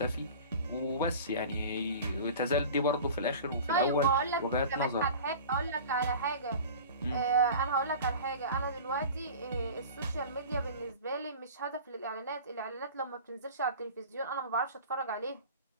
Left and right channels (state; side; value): inverted; both; correlation -0.39